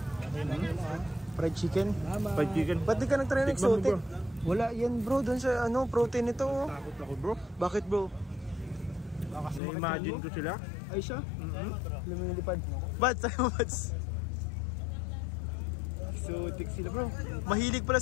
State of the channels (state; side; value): drops out; right; at 9.6 s